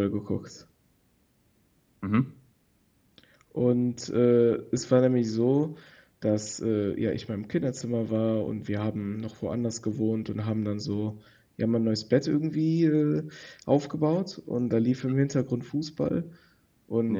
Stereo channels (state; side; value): identical; both; correlation 1.00